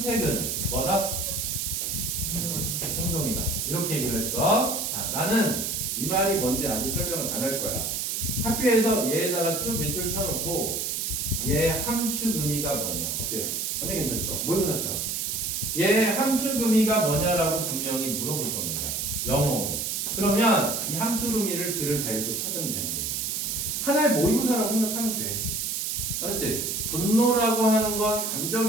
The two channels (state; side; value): noise; right; hiss, 1 dB below the sound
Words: 뭐다? 행동이다. 이렇게 얘기를 했어. 자, 나는 이 말이 뭔지 아직 설명을 안 할 거야. 학교에서 얘에다가 쭉 몇 줄 쳐놓고 얘 함축 의미가 뭐냐? 어때요? 완전 괜찮죠? 모의고사처럼. 얘 함축 의미가 뭐냐라고 분명히 물어볼 겁니다. 영어로. 그러면 이 함축 의미를 글을 다 읽고 찾으면 되는 거예요. 하나의 모의고사라고 생각하면 돼. 알았지? 분노라고 하는 건